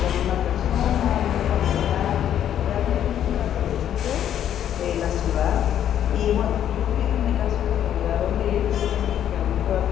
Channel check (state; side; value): quieter; right; 10.3 dB